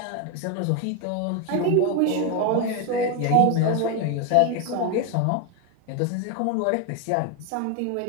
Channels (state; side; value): different; both; correlation 0.01